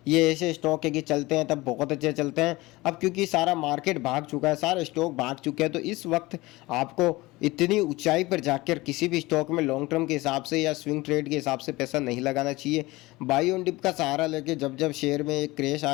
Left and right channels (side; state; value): right; quieter; 20.7 dB